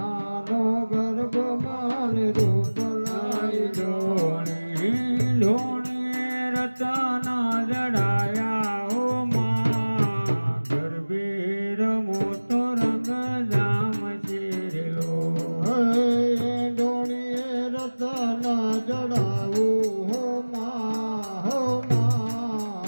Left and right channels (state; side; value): inverted; both; correlation -1.00